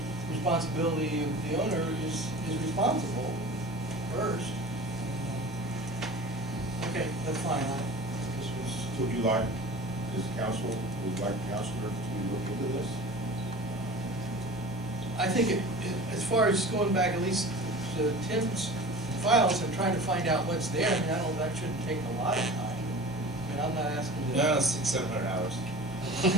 responsibility of the owner is responsible first. Okay, that's fine. This was. Would you like, would the counselor to look into this? I think as far as going back at least to Tim's files and trying to find out what's there, I mean, that shouldn't take a lot of time. I mean, I'm not asking to. No, 600-700 hours.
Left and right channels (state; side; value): normal; both; correlation 0.38